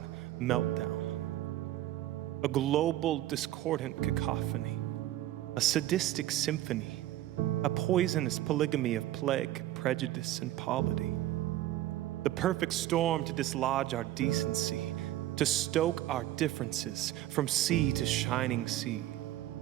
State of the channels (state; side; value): quieter; left; 14.1 dB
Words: meltdown, a global discordant cacophony, a sadistic symphony, a poisonous polygamy of plague, prejudice, and polity, the perfect storm to dislodge our decency, to stoke our differences from sea to shining sea.